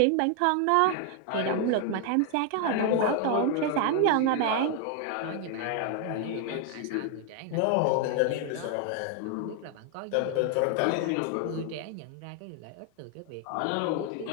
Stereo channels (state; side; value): different; both; correlation 0.00